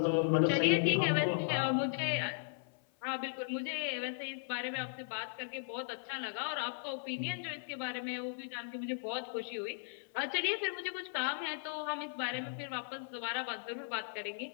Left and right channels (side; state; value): right; silent; 53 dB below the other